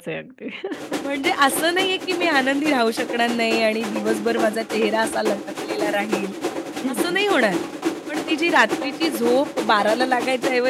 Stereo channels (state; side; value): identical; both; correlation 1.00